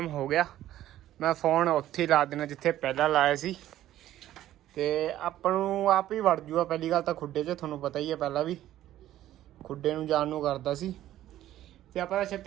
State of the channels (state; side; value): quieter; left; 13.3 dB